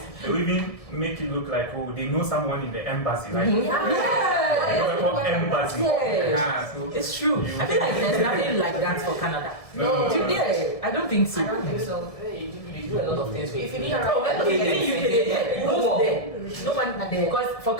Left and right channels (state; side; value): late; right; 1.7 ms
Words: they will even make it look like, oh, they know someone in the embassy, right? Yeah. What embassy? Yes. Ah, so It's true. I feel like there's nothing like that for Canada. No. Yeah, I don't think so. I don't think so. You do a lot of things. If you need Oh, well, agents, no one at the Because for